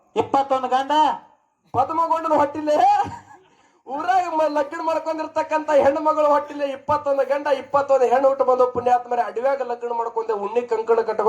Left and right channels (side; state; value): both; identical; correlation 1.00